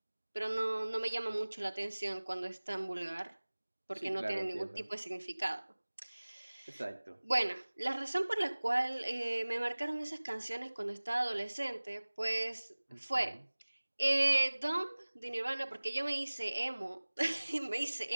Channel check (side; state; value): both; inverted; correlation -1.00